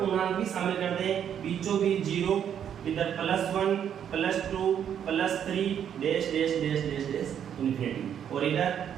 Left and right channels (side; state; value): left; quieter; 9.0 dB